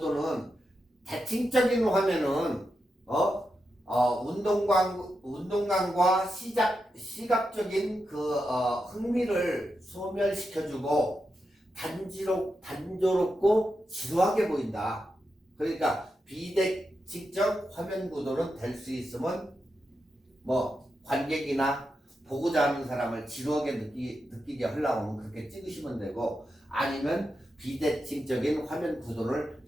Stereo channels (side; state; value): both; normal; correlation 0.87